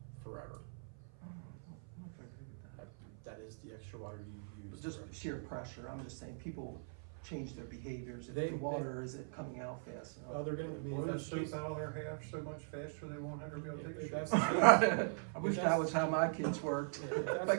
forever. I don't know if I agree with that. That is the extra water you use. Just forever. sheer pressure, I'm just saying, people change their behaviors, if They- the water isn't coming out fast enough. Oh, they're gonna, I mean, if Blow the that's the case, soap out of their half so much faster they won't ever be able to take a if shit. that's the case, I wish that was how my kids worked. if that's My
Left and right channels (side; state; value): left; silent; 51 dB below the other